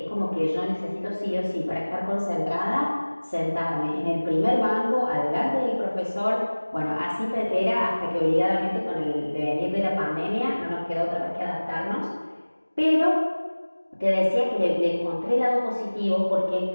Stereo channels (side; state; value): both; inverted; correlation -1.00